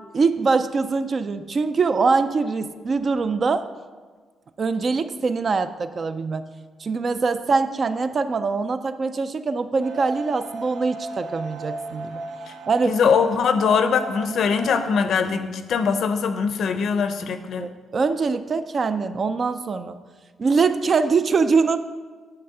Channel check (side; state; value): both; normal; correlation 0.81